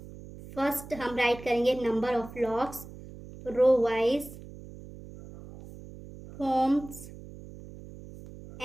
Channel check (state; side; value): noise; right; hum, 16 dB below the sound